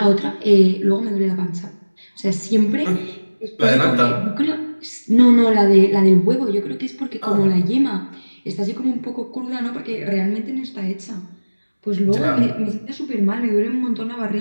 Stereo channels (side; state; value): both; inverted; correlation -1.00